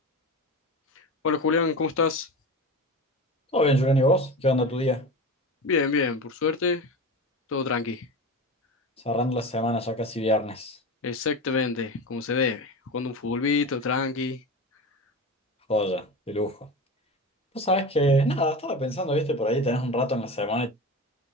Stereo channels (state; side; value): normal; both; correlation 0.27